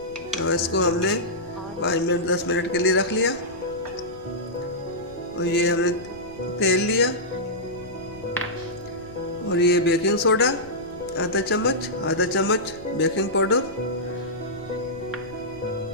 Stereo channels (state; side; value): noise; left; rumble, 21 dB below the sound